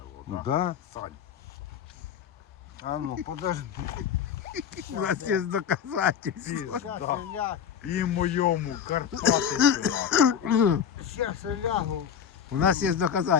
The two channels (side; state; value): right; quieter; 8.1 dB